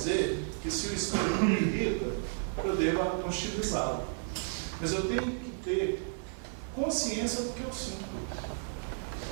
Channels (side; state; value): left; silent; digital silence